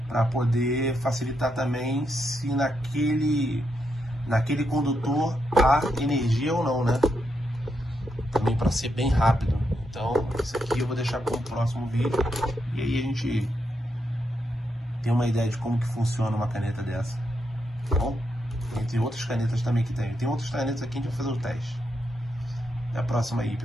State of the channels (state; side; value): normal; both; correlation 0.81